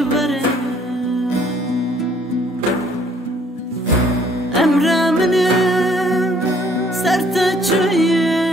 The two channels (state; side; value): normal; both; correlation 0.61